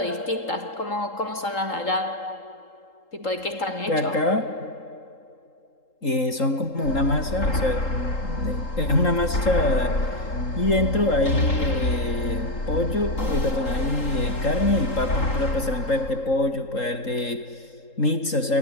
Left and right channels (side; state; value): right; late; 3.8 ms